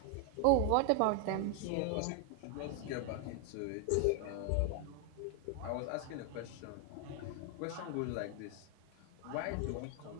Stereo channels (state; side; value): different; both; correlation 0.00